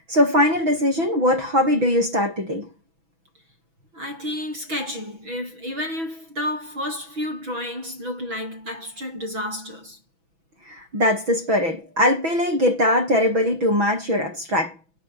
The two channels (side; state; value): left; late; 6.1 ms